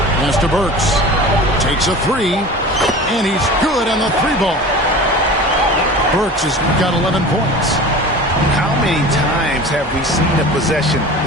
Pass to Burks. Takes a 3. And he's good on the 3-ball. Burks has got 11 points. How many times have we seen a possession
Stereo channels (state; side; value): normal; both; correlation 0.37